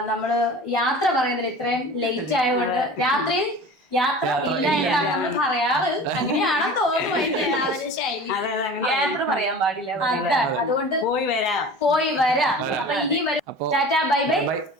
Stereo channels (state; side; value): normal; both; correlation 0.38